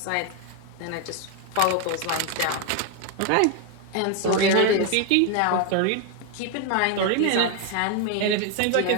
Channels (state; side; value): different; both; correlation 0.01